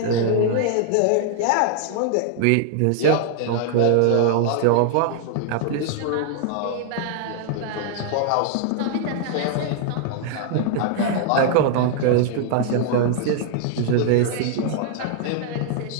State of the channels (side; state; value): both; different; correlation 0.00